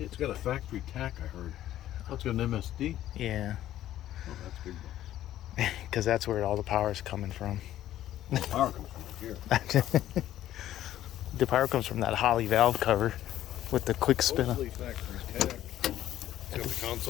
It's got a factory tack. I heard. Oh, it's got an MSD. Yeah, Oh, that's big. because that's where all the power is coming from. Well, power comes from here. The power comes from that Holly valve cover with the quick spin. Mostly factory tack. It's got the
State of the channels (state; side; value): quieter; right; 12.9 dB